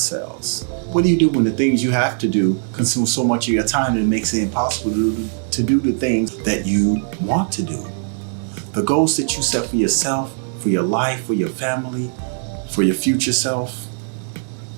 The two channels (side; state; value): left; silent; digital silence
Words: What do you do when the things you have to do consume so much of your time that it makes it impossible to do the things that you want to do? The goals that you set for yourself, for your life, for your family, for your future self,